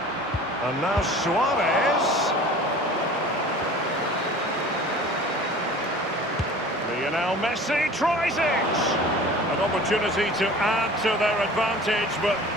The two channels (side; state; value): both; normal; correlation 0.43